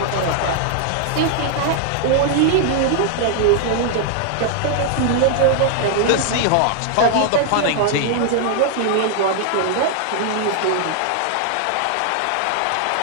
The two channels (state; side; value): different; both; correlation 0.00